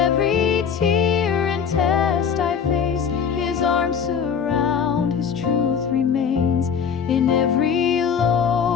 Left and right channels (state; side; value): quieter; right; 7.0 dB